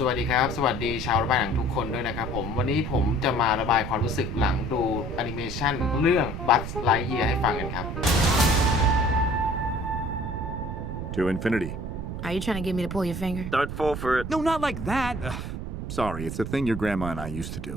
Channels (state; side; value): noise; right; rumble, 6 dB below the sound